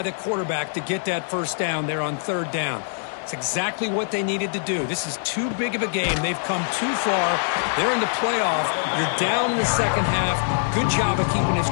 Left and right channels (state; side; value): silent; right; digital silence